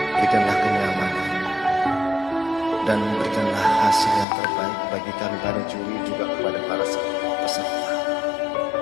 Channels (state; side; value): drops out; right; at 4.2 s